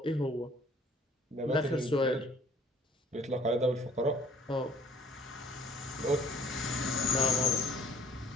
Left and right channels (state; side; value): normal; both; correlation 0.55